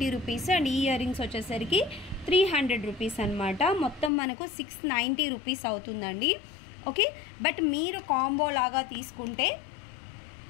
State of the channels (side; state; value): right; drops out; at 4.1 s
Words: రూపీస్ అండ్ ఈ ఇయర్ రింగ్స్ వచ్చేసరికి 300 రూపీస్ అనమాట. మొత్తం మనకు 690 రూపీస్ అవుతుందండి. ఓకే, బట్ మీరు కాంబో లాగా తీసుకుంటే